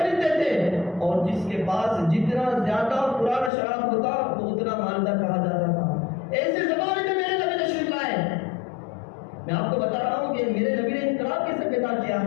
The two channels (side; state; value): right; drops out; at 3.5 s